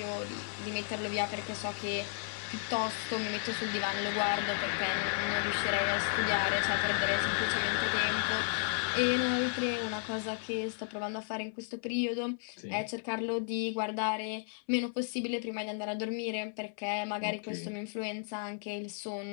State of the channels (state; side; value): silent; right; 55 dB below the other